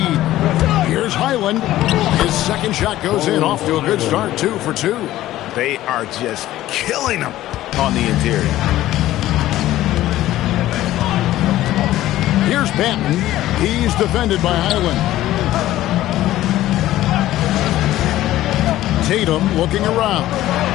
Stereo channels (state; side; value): quieter; right; 14.7 dB